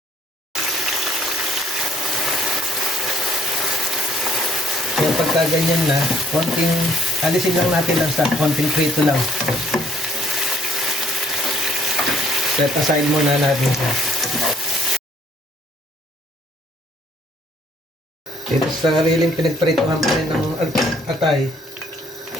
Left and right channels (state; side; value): normal; both; correlation 0.64